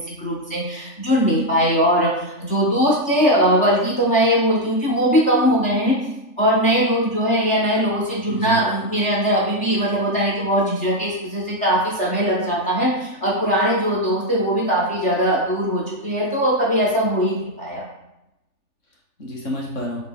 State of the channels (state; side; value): late; right; 3.4 ms